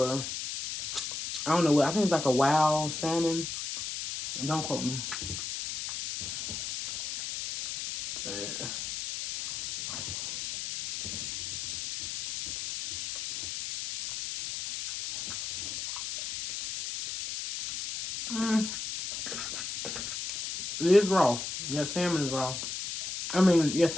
I don't know what, I think it's like a wild salmon. Don't quote me. It is raw. Yeah, salmon is raw. I mean, yeah,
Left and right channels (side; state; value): left; noise; hiss, 5 dB below the sound